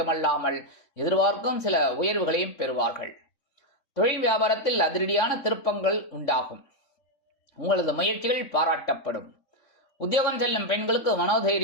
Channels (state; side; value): late; right; 3.6 ms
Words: எதிர்பார்க்கும் சில உயர்வுகளையும் பெறுவார்கள். தொழில் வியாபாரத்தில் அதிரடியான திருப்பங்கள் உண்டாகும். உங்களது முயற்சிகள் பாராட்டப்படும். உத்தியோகம் செல்லும் பெண்களுக்கு